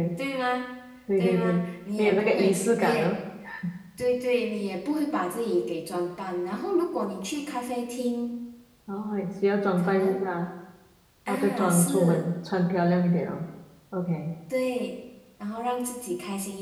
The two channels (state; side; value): identical; both; correlation 1.00